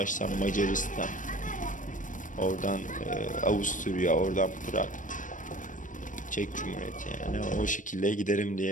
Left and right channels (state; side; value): late; right; 0.37 ms